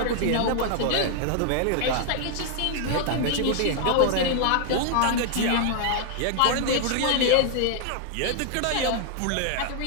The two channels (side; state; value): both; different; correlation 0.00